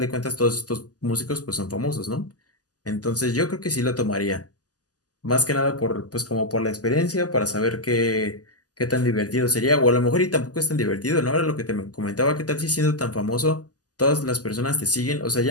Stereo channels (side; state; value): right; late; 0.67 ms